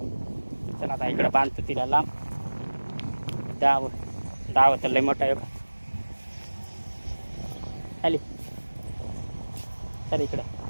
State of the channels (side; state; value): both; inverted; correlation -1.00